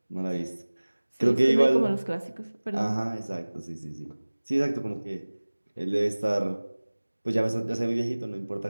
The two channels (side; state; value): both; inverted; correlation -1.00